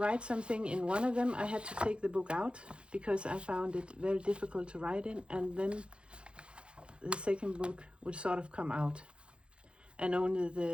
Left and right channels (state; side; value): late; left; 0.057 ms